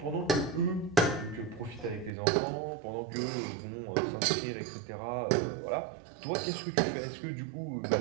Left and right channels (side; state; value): left; drops out; at 2.1 s